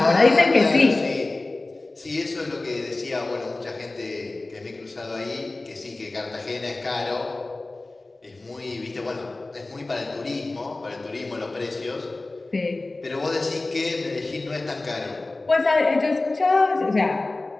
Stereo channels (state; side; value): quieter; right; 3.1 dB